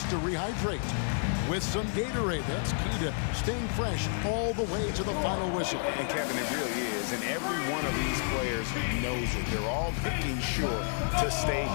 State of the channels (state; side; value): silent; right; 55 dB below the other